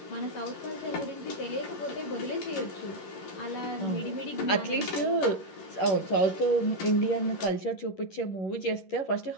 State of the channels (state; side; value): late; right; 11 ms